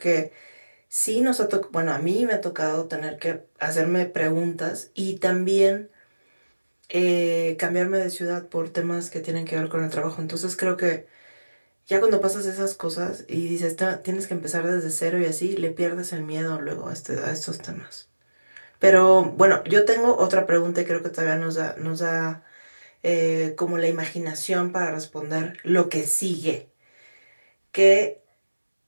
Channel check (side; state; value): both; inverted; correlation -1.00